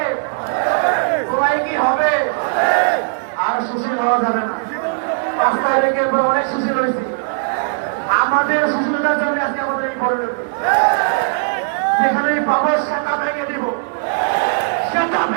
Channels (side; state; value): left; silent; 64 dB below the other